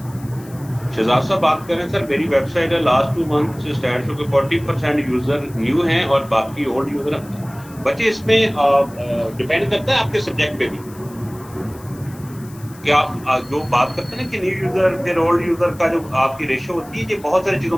शहजाद साहब बात करें सर, मेरी वेबसाइट है लास्ट 2 मंथ से स्टैट शो के 40% यूजर न्यू हैं और बाकी ओल्ड यूजर बचे। इसमें डिपेंड करता है आपके सब्जेक्ट पे भी, कि आप जो बात करते हैं ना कि न्यू यूजर फिर ओल्ड यूजर का जो आपकी रेशो होती है, ये बहुत सारी चीजों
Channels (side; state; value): left; noise; hiss, 23 dB below the sound